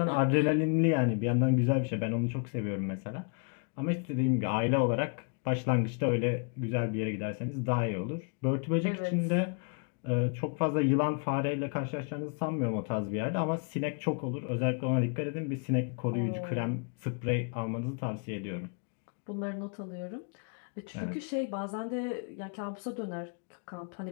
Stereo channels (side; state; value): right; quieter; 39.3 dB